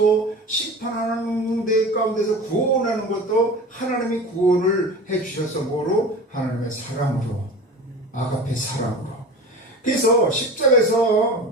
심판하는 데 가운데서 구원하는 것도 하나님이 구원을 해 주셔서 뭐로? 하나님의 사랑으로, 아가페 사랑으로. 그래서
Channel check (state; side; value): normal; both; correlation 0.34